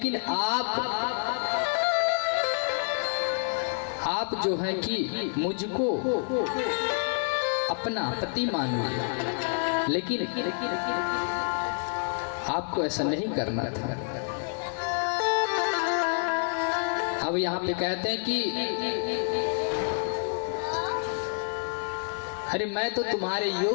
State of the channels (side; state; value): right; silent; 55 dB below the other